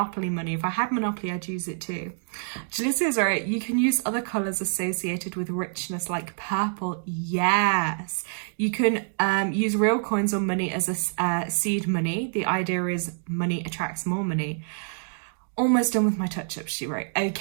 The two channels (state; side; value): silent; left; digital silence